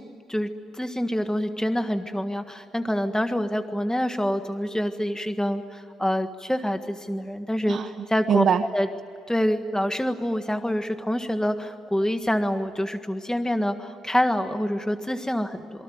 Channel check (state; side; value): normal; both; correlation 0.94